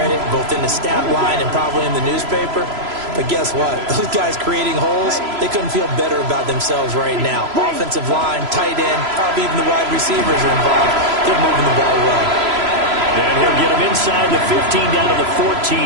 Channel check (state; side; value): late; left; 3.0 ms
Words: both in the stat line and probably in the newspaper. But guess what? Those guys creating holes, they couldn't feel better about themselves right now. Offensive line, tight end, probably even the wide receivers are involved. They're moving the ball well. And he'll get him inside the 15 down to the